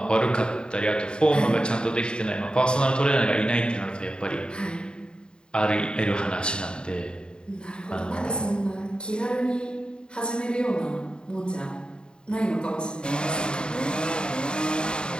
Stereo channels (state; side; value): late; right; 0.049 ms